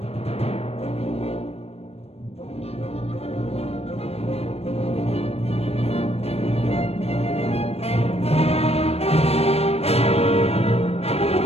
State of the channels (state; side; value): late; right; 0.29 ms